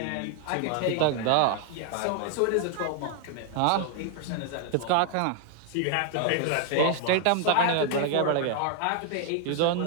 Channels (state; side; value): different; both; correlation 0.00